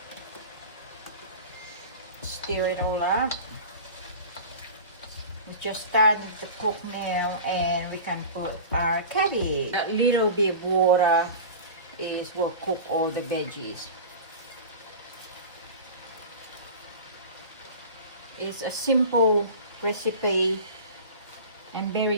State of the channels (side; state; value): both; inverted; correlation -0.34